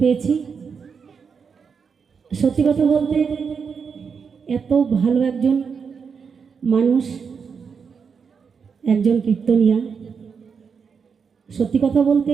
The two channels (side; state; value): left; quieter; 6.0 dB